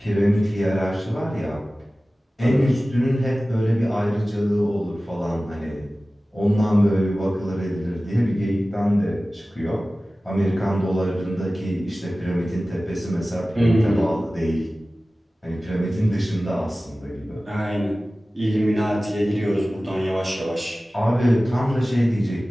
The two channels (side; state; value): both; normal; correlation 0.97